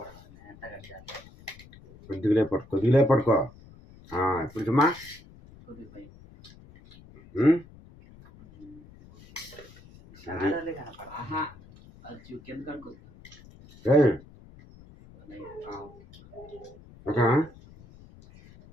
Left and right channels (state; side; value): noise; left; rumble, 22 dB below the sound